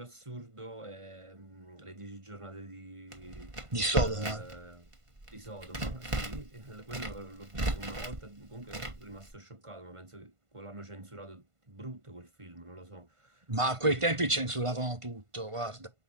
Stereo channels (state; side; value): late; left; 1.5 ms